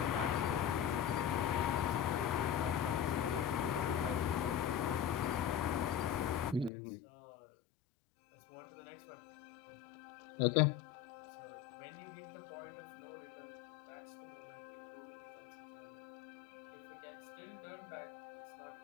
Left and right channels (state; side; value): drops out; right; at 6.7 s